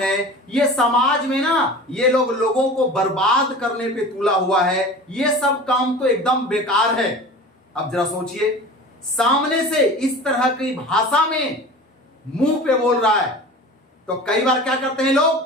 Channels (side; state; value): both; normal; correlation 0.37